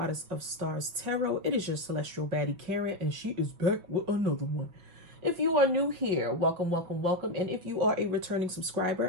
of Stars Tarot. It is your celestial baddie, Karen, and she is back with another one. If you are new here, welcome, welcome, welcome. And if you are a returning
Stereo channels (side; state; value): left; late; 5.9 ms